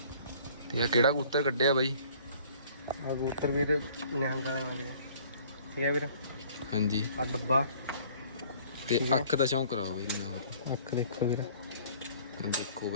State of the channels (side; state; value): both; inverted; correlation -0.54